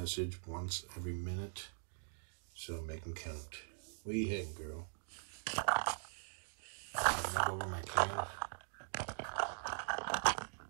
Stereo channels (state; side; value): silent; left; digital silence